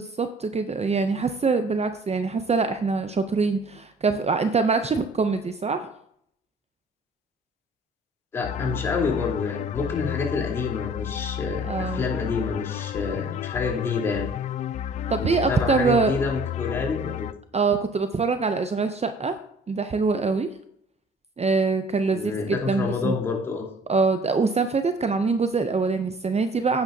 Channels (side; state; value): both; normal; correlation 0.52